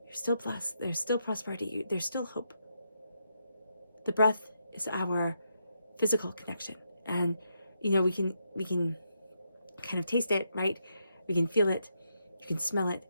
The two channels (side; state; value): both; inverted; correlation -0.80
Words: you're still blessed. There's still prosperity. There's still hope. The breath is our physical connection. And, you know, we can kind of taste it, right? We can feel it. You can smell it.